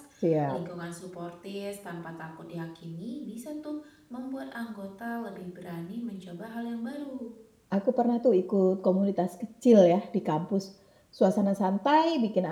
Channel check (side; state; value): both; identical; correlation 1.00